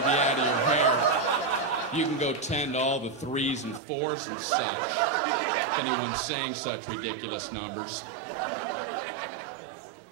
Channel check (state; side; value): drops out; left; at 3.8 s